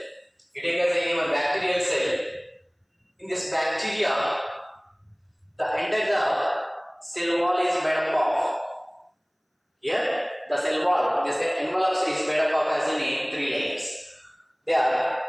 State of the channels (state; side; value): identical; both; correlation 1.00